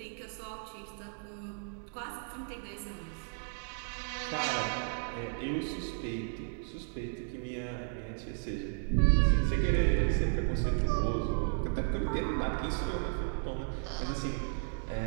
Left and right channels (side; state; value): left; silent; digital silence